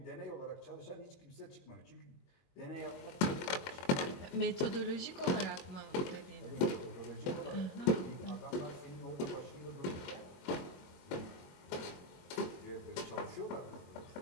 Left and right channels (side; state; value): right; late; 22 ms